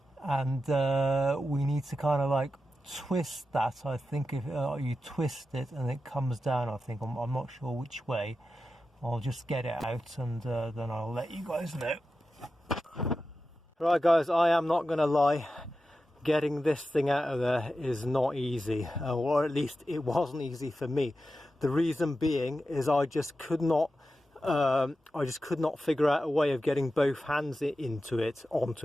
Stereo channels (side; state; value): both; normal; correlation 0.91